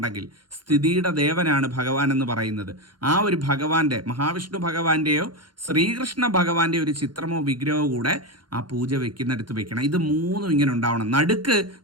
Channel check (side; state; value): left; late; 0.71 ms